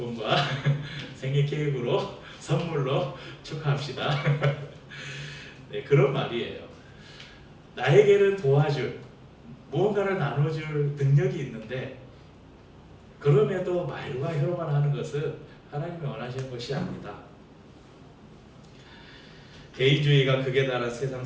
생일 케이크로 선물로 축하합시다. 네, 그런 말이에요. 나에게는 도와줄, 무언가를 나눠줄 능력이 있는데, 그럼에도 말과 혀로만 하는 것은 하나님이 원하시는 것이 아니다. 개인주의가 극에 달한 세상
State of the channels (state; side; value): identical; both; correlation 1.00